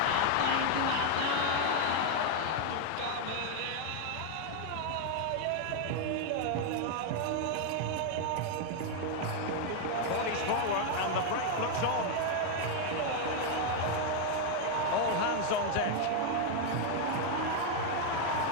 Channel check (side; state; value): both; different; correlation 0.01